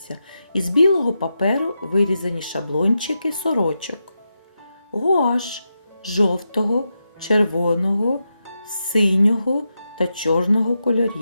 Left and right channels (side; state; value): both; inverted; correlation -0.87